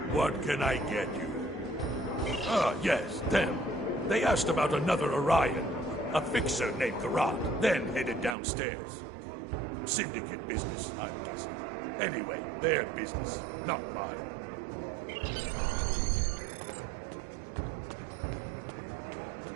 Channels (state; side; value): drops out; left; at 8.3 s